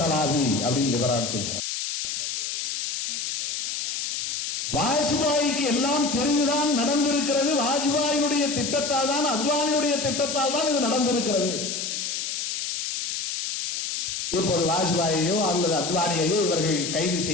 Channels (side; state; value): left; noise; hiss, 3 dB below the sound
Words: அப்படின்னு லிபரான் சொல்கிறார். வாஜ்பாய்க்கு எல்லாம் தெரிந்துதான் நடந்திருக்கிறது. வாஜ்பாயினுடைய திட்டத்தால் தான், அத்வானியுடைய திட்டத்தால் தான் இது நடந்திருக்கிறது. இப்போது வாஜ்பாயையோ அல்லது அத்வானியையோ இவர்கள் கைது